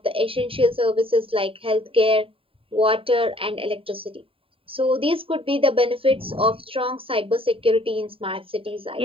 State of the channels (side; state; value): left; late; 0.27 ms